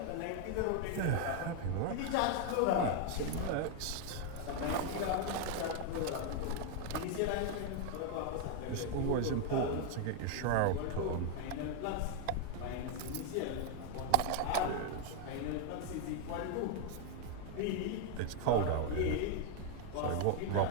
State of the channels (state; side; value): different; both; correlation 0.01